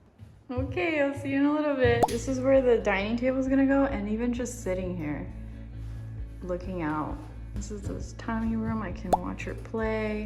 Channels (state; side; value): identical; both; correlation 1.00